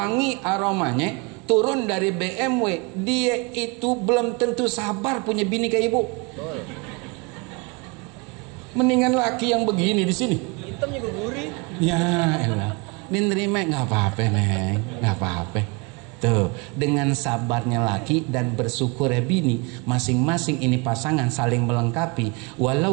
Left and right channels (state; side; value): quieter; left; 29.1 dB